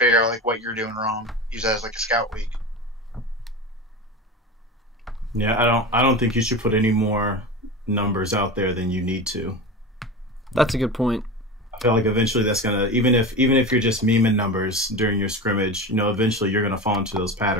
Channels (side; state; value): both; normal; correlation 0.27